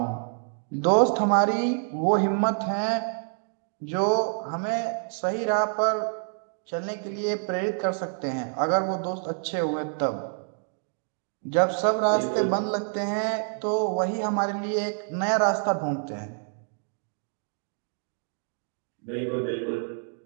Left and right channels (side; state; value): left; silent; 60 dB below the other